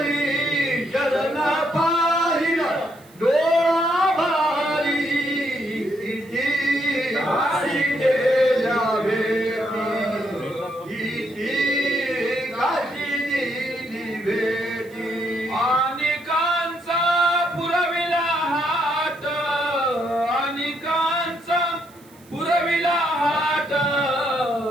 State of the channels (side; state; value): right; noise; hiss, 27 dB below the sound